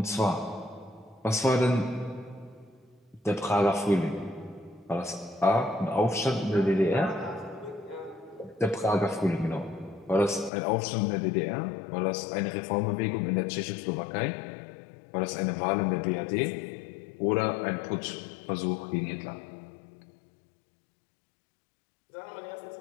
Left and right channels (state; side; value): drops out; right; at 10.5 s